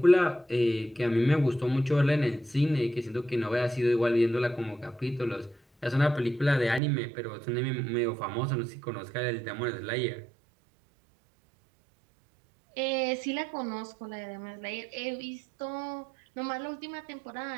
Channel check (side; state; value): left; drops out; at 6.8 s